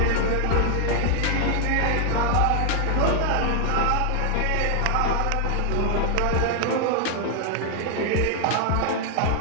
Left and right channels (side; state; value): both; different; correlation 0.00